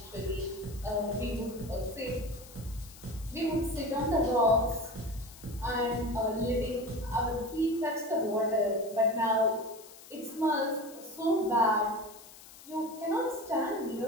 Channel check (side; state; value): left; noise; hiss, 19 dB below the sound